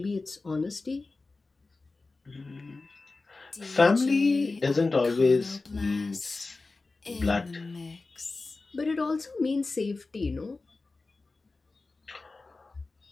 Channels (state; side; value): quieter; right; 3.6 dB